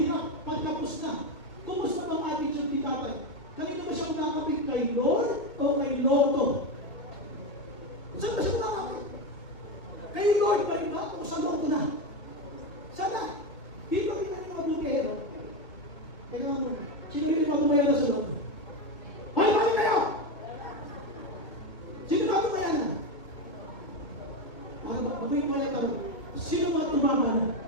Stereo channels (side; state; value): right; late; 1.6 ms